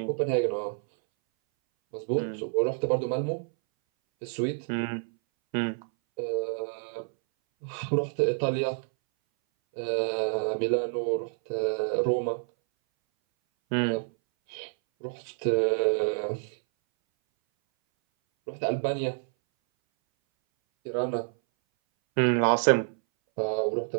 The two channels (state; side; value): silent; left; 59 dB below the other